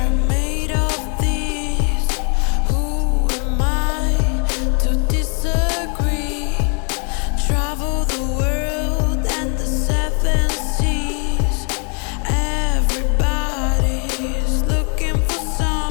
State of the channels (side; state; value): right; quieter; 38.8 dB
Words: made of these. Who am I to disagree? Travel the world and the seven seas. Everybody's looking for